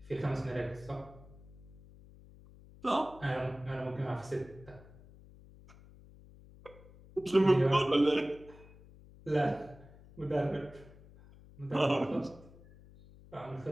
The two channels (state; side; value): noise; left; hum, 21 dB below the sound